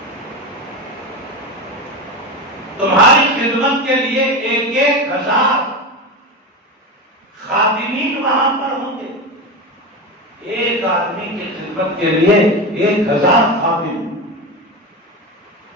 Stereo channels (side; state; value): both; normal; correlation 0.20